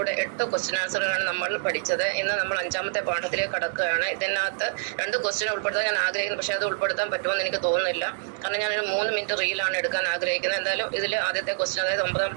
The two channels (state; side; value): silent; left; digital silence